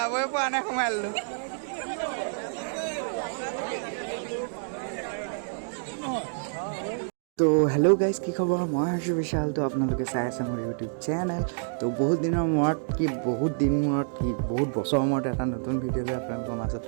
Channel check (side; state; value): left; silent; digital silence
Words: পৰা নাই সোমাই ললো तो हेलो गाइस की खबर मैं हर्ष विशाल तो आपलोके चाই আছে মোৰ ইউটিউব চেনেল তো বহুত দিনৰ মূৰত কি বহুত বছৰ মূৰত এটা নতুন ভিডিঅ' লৈ আপোনালোকৰ মাজত